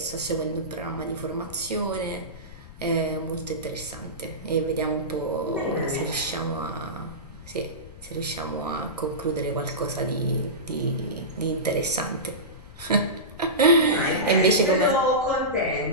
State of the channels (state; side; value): noise; left; rumble, 16 dB below the sound